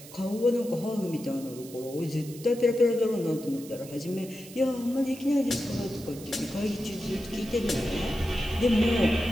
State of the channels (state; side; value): noise; right; hiss, 17 dB below the sound